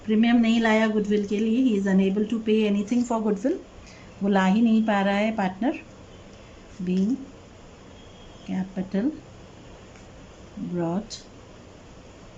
प्रीमियम नहीं लाया गुडविल के लिए, ही is unable to pay anything for goodwill, वो ला ही नहीं पा रहा है partner, being capital brought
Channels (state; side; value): identical; both; correlation 1.00